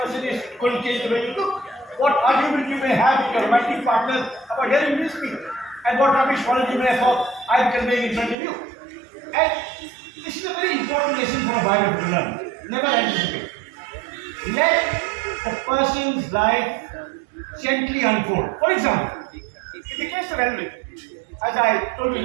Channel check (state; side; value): drops out; left; at 8.3 s